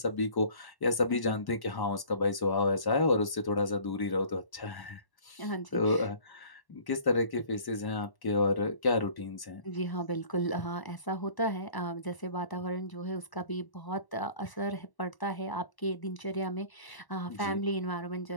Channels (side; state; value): right; late; 1.1 ms